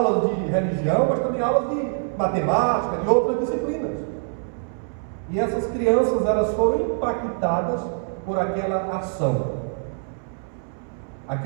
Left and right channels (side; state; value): left; silent; 63 dB below the other